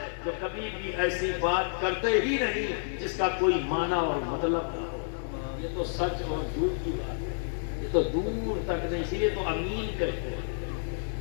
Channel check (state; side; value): silent; right; digital silence